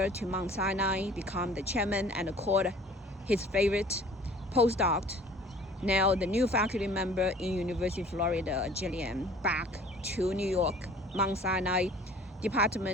to Mount Sinai, become the chairman and called his favorite postdoc, now the new faculty member in University of Florida, Jillian, back to New York, Mount Sinai,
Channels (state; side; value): normal; both; correlation 0.49